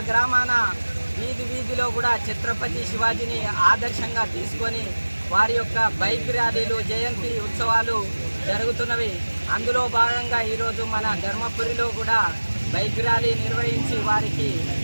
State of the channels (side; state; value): both; inverted; correlation -1.00